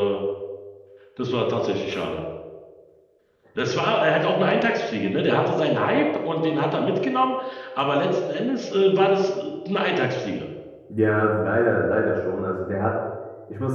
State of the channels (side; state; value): both; identical; correlation 1.00